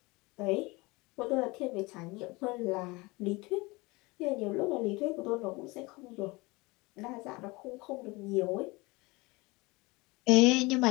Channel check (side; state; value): right; quieter; 24.0 dB